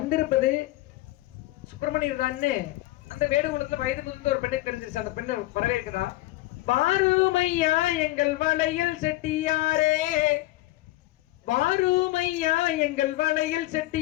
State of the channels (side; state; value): right; quieter; 18.0 dB